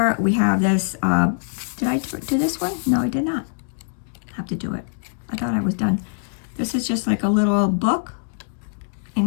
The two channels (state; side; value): silent; right; digital silence